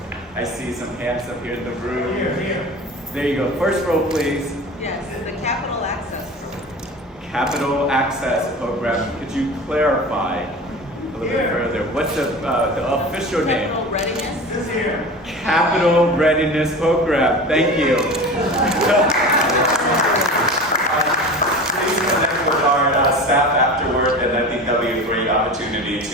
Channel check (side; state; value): both; normal; correlation 0.33